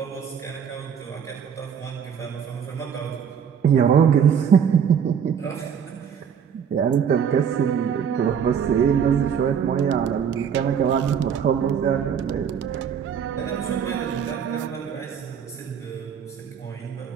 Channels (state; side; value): quieter; left; 7.7 dB